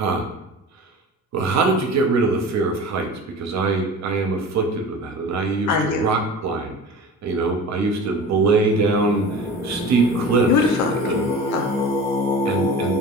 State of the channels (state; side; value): normal; both; correlation 0.36